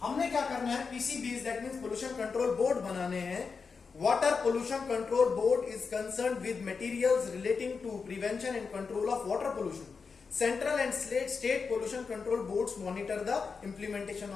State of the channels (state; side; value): quieter; right; 5.1 dB